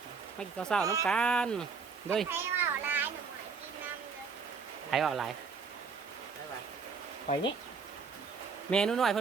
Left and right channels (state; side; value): quieter; left; 5.2 dB